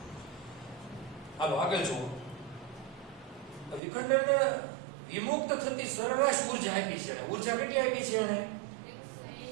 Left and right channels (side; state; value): left; drops out; at 3.8 s